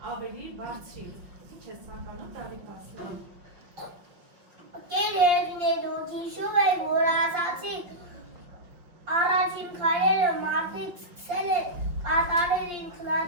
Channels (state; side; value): late; left; 5.6 ms